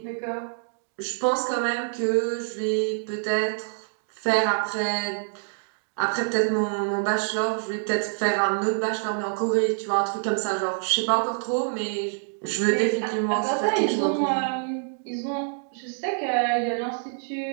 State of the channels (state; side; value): silent; left; digital silence